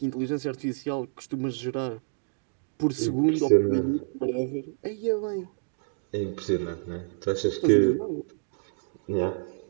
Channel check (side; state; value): left; silent; digital silence